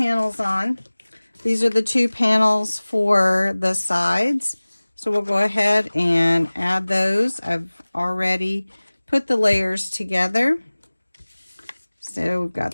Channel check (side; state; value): both; inverted; correlation -1.00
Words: on. These are the 2 panels for the sides. So we'll go ahead and add those. I've already put the layers together. So we've